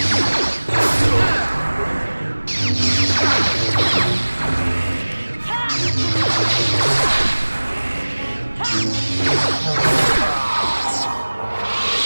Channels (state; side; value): inverted; both; correlation -1.00